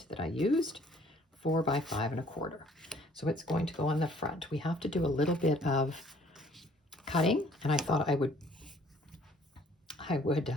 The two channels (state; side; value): normal; both; correlation 0.59